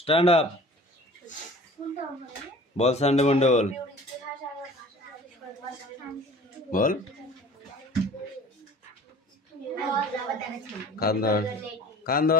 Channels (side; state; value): both; normal; correlation 0.44